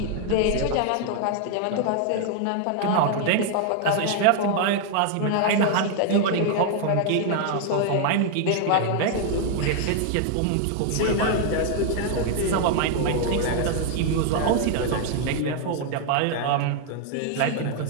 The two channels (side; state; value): both; different; correlation 0.00